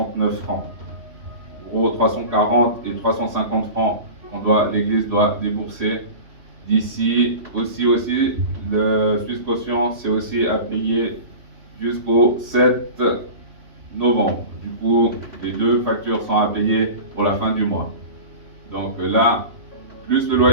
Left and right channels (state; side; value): late; left; 3.1 ms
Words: francs. En gros, 340 et 350 francs, l'Église doit débourser d'ici. Aussi, le Suisse Caution, c'est aussi à payer jusqu'au 7 novembre. Du coup, les deux factures sont à payer pour la fin du mois. Donc là, plus le